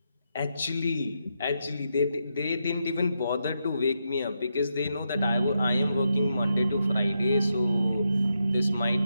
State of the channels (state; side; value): inverted; both; correlation -0.83